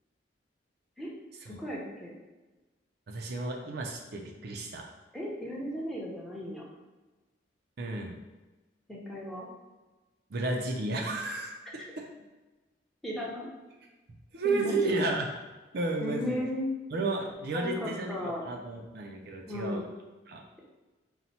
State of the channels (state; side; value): normal; both; correlation 0.46